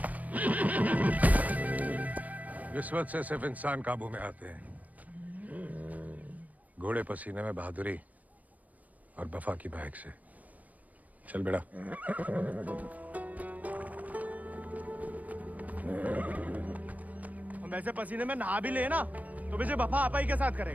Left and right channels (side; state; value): left; late; 0.073 ms